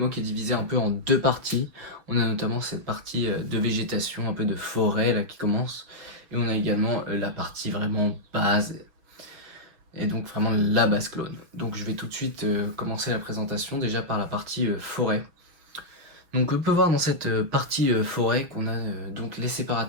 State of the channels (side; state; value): left; late; 6.2 ms